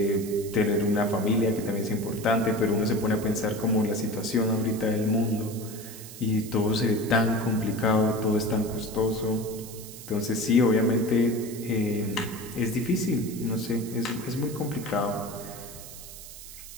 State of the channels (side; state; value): right; noise; hiss, 14 dB below the sound